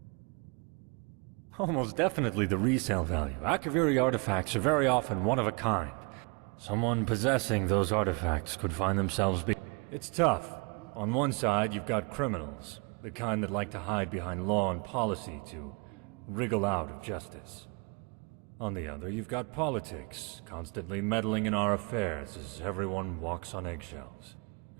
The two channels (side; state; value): left; quieter; 32.5 dB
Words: Almost definitely the resale value. Akaviri artifacts are very often one of a kind. Someone possessing those artifacts could find themselves It's tough. On one side, you've got criminals, the kind that like to hide behind law and policy to wriggle out of justice. On the other, you've got politics, constantly meddling in our affairs as everyone walks on eggshells.